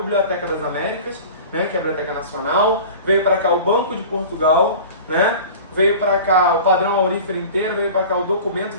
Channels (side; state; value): both; inverted; correlation -0.38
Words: das Américas, né, que é a Biblioteca Nacional, veio para cá o Banco de Portugal, né, veio para cá o padrão aurífero inteiro, veio para cá o documento,